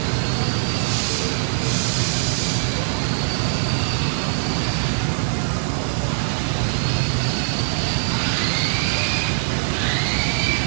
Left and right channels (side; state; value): left; silent; 64 dB below the other